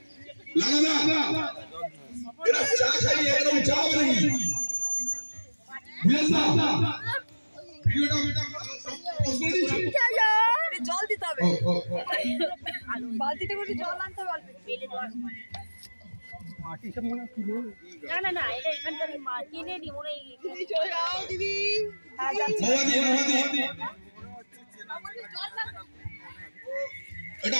না এরা চা খাইয়ে এরকম চা হবে নাকি? জল দিতে হবে, বালতিতে করে জল আনতে হবে, মাটি সব মনে না এটা এখানকার কিনে নি মনে চলে যাও দিদি। এটা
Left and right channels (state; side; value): inverted; both; correlation -1.00